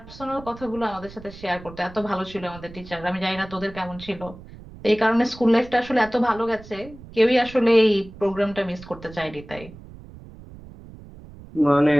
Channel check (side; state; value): right; noise; rumble, 18 dB below the sound